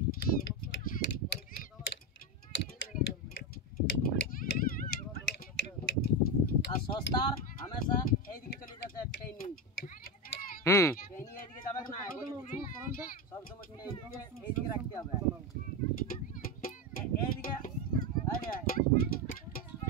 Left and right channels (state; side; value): normal; both; correlation 0.14